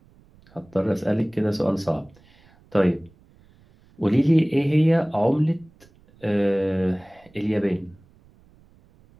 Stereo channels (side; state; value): right; noise; rumble, 29 dB below the sound